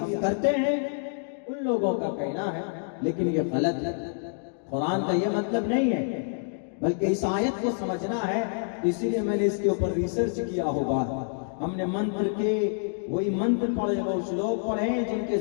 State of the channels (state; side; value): silent; right; digital silence